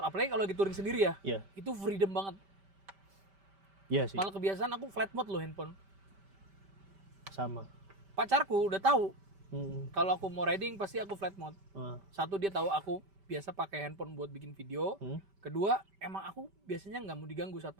kalau lagi touring sendiri ya. Iya. Itu freedom banget. Iya sih. Malah kebiasaan aku flight mode loh handphone. Sama. Pacarku udah tahu Mm. kalau aku mau riding pasti aku flight mode. Ah. Satu, dia tahu aku biasa pakai handphone buat bikin video. Kedua, emang aku biasanya nggak mau diganggu saat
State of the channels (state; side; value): late; left; 5.1 ms